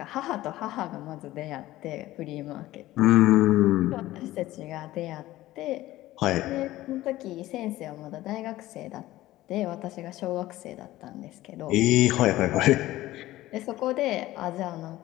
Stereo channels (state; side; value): quieter; right; 16.2 dB